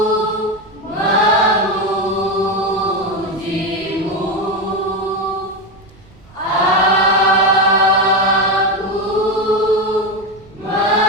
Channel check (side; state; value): right; noise; rumble, 26 dB below the sound